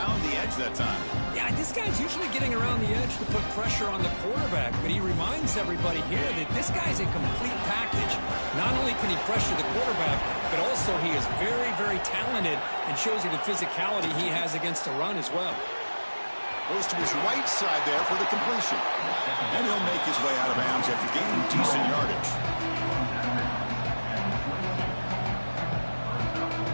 the edge that time. Yeah, this guy's usually getting around the edge to put pressure on the quarterback, but he reminds everybody here that this guy's a complete package. Not only can he pressure the quarterback, but also he is very, very talented and shows you the physicality he has against the run as well. Goes to his right side there for the completion. And he'll make his way out of bounds after gaining decent yardage.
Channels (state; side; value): inverted; both; correlation -1.00